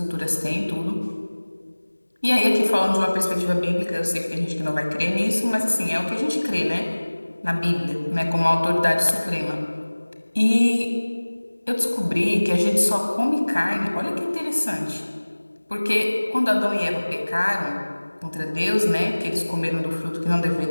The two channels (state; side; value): inverted; both; correlation -1.00